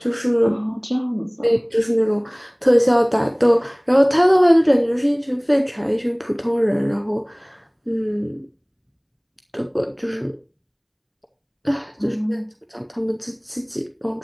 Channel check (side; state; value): both; identical; correlation 1.00